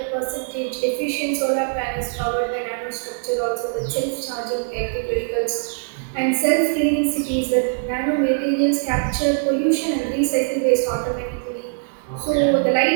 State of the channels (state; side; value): silent; left; digital silence